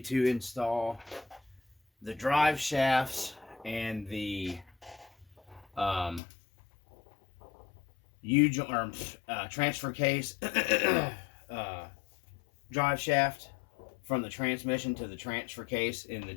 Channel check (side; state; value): right; drops out; at 6.2 s